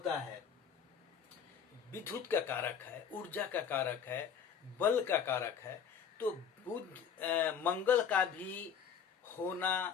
है विद्युत का कारक है, ऊर्जा का कारक है, बल का कारक है। तो मंगल का भी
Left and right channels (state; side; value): quieter; right; 7.4 dB